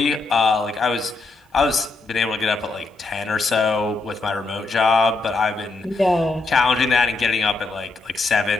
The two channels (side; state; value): right; quieter; 3.6 dB